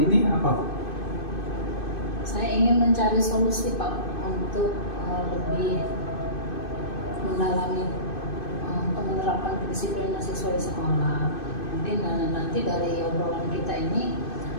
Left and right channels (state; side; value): late; right; 2.6 ms